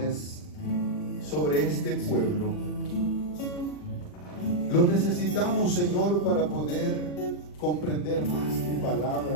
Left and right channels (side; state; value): right; late; 40 ms